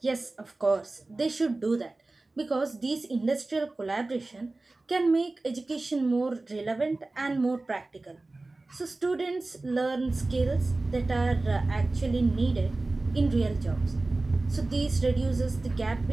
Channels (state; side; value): quieter; left; 3.1 dB